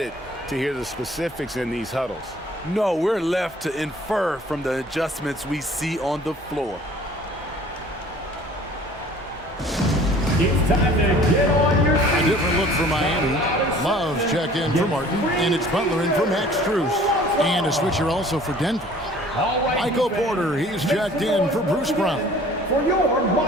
to hear the specifics in these huddles. No, we're left to infer from the adjustments we see on the floor. It's time to get on your feet. A different look for Miami. Love's checked in for Martin, and it's Butler in for Max Strus. And a switcher also for Denver. Michael Porter, he's checked in for Bruce Brown. For your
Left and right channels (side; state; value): both; normal; correlation 0.50